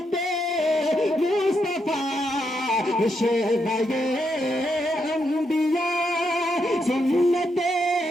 मुस्तफा शेबये अंबिया सुन्नते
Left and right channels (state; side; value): normal; both; correlation 0.80